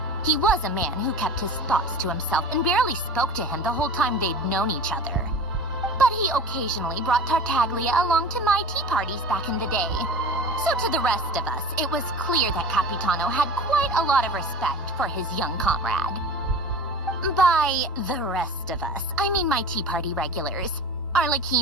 He was a man who kept his thoughts to himself and barely spoke to him the whole time they'd known each other. But he occasionally brought Tartaglia along to my tea parties back in the day. So to the rest of us, it was clear that Capitano had quite a lot of respect for his young comrade. By the rest of us, I mean my tea party regulars.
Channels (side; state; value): both; normal; correlation 0.37